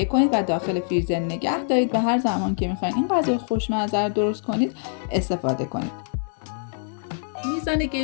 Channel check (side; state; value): right; silent; digital silence